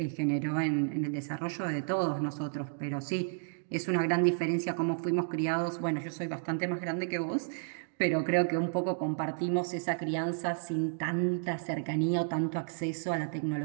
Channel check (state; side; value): silent; left; digital silence